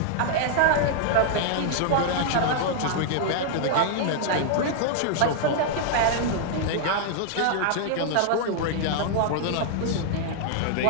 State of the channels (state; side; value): different; both; correlation -0.01